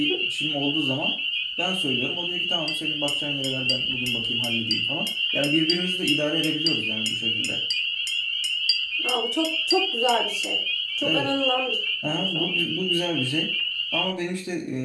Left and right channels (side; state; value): both; identical; correlation 1.00